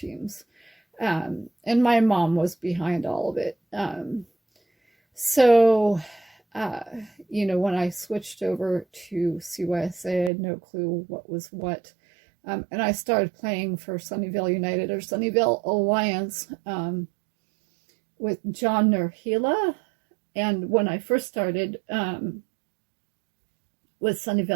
And my mom was behind all of it. So, you know, when I switched over to CYSA, I had no clue what was what. And I started playing for Sunnyvale United or Sunnyvale Alliance with John Nurhila. And when I first started with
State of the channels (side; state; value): left; drops out; at 10.3 s